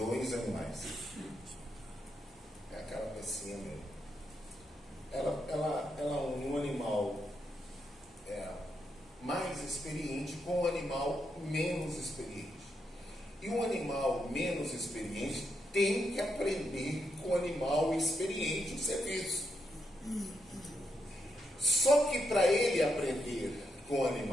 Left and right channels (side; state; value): both; normal; correlation 0.81